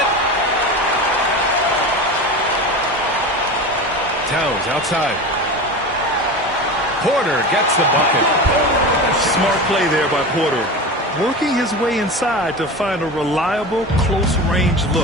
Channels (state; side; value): normal; both; correlation 0.28